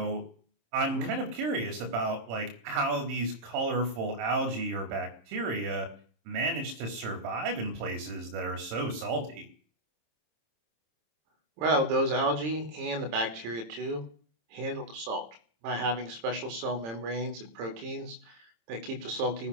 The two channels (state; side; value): late; left; 26 ms